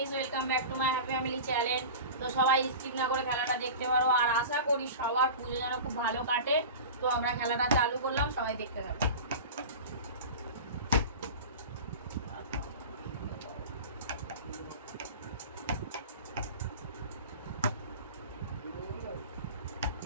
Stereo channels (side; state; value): both; inverted; correlation -0.32